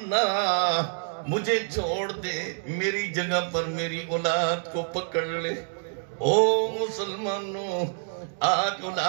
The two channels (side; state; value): left; silent; digital silence